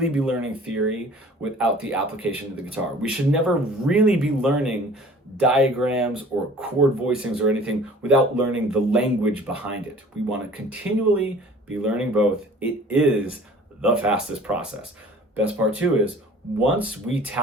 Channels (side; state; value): both; normal; correlation 0.48